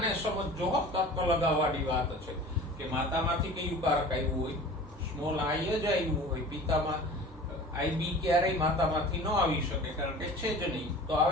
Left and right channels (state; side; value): normal; both; correlation 0.41